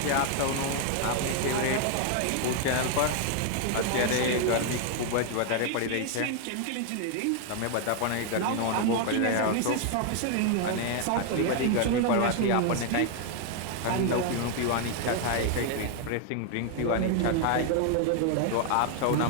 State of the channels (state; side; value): different; both; correlation 0.00